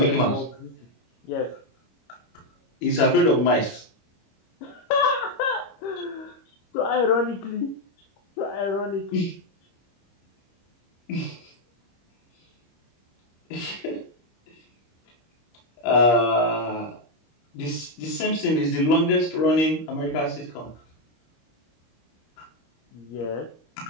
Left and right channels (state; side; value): late; right; 25 ms